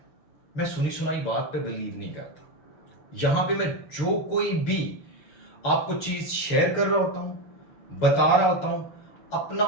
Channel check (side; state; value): right; late; 6.4 ms